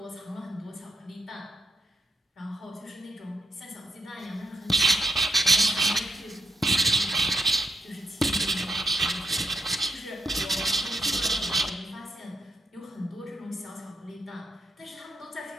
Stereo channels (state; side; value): normal; both; correlation 0.80